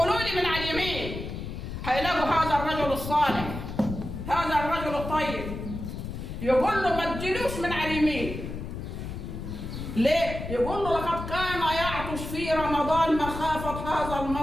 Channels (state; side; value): noise; left; rumble, 7 dB below the sound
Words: لي من على اليمين، هيلاقوا هذا الرجل الصالح، هذا الرجل الطيب، يقول له ما تجيلوش من على اليمين. ليه؟ يقول له لقد كان يعطش في رمضان مخافة هذا